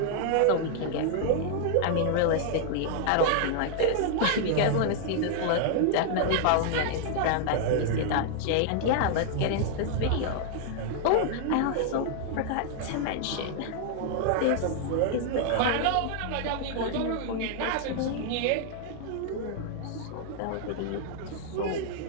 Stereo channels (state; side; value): different; both; correlation 0.00